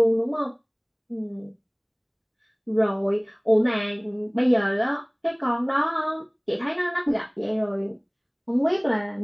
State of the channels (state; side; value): identical; both; correlation 1.00